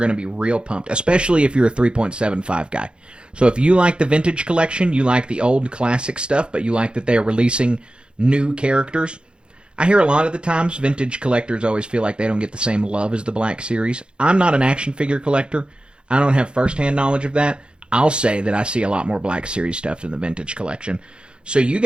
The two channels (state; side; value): late; left; 0.053 ms